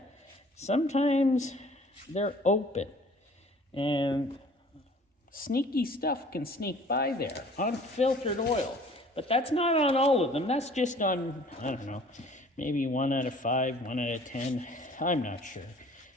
Sometimes they're open. And sneaky stuff can sneak by there. Unfiltered oil. But that's not on all of them. That's just on, I don't know, maybe 1 out of 5, 1 out of 10. I'm not sure.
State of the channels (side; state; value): both; normal; correlation 0.51